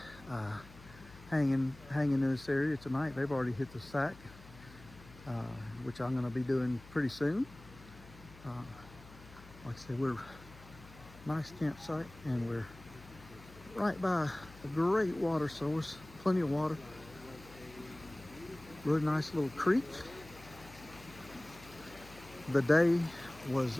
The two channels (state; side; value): noise; left; hum, 19 dB below the sound